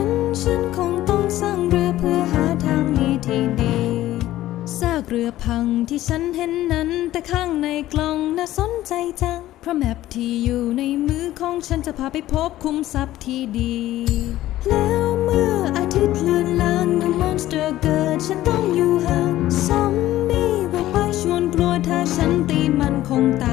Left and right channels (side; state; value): right; quieter; 14.7 dB